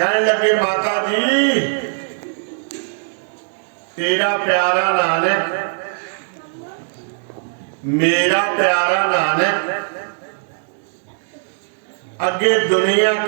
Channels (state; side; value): silent; left; 66 dB below the other